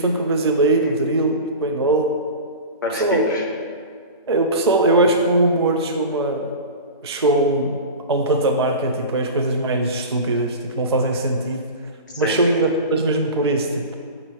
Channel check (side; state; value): both; inverted; correlation -0.31